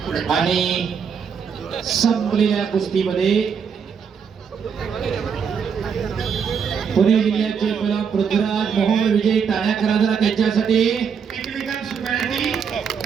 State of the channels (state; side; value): quieter; left; 6.7 dB